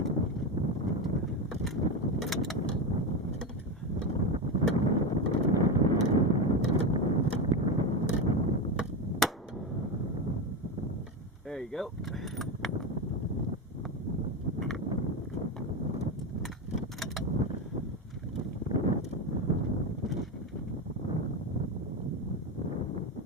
There you go.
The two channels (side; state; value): both; normal; correlation 0.15